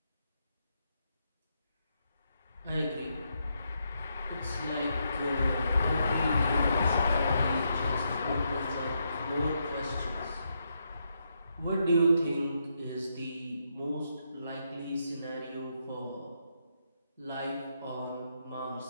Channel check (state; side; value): inverted; both; correlation -0.80